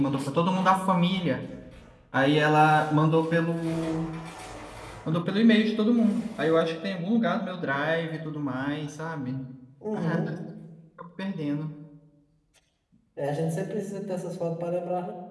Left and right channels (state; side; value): identical; both; correlation 1.00